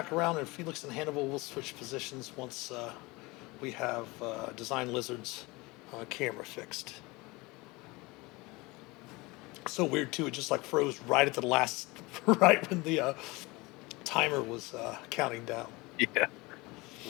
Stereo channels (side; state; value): right; quieter; 23.5 dB